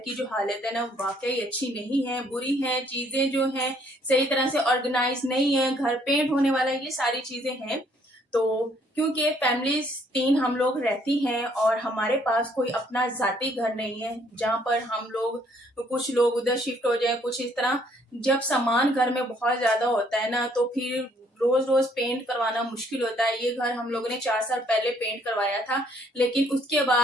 जो हालत है ना वाकई अच्छी नहीं है, बुरी है। चीजें जो हैं सही तरह से ऑर्गेनाइज नहीं है, घर पेंट होने वाला है, ये सारी चीजें हैं। तो क्योंकि फैमिलीज 3 हम लोग रहती हैं और हमारे पास कोई अपना जाती घर नहीं है जहाँ पर हम लोग कुछ लोग उधर शिफ्ट हो जाए, कुछ इस तरह। जब सामान घर में बहुत ज्यादा होता है ना तो फिर रोज रोज पेंट करवाना मुश्किल होता है। ये घर हम लोगों ने 4 साल पहले पेंट करवाया था, लेकिन उसके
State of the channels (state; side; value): normal; both; correlation 0.65